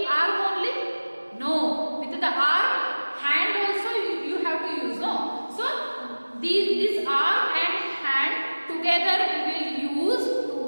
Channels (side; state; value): both; inverted; correlation -1.00